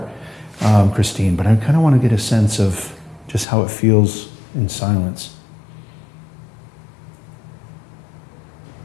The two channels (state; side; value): drops out; right; at 3.5 s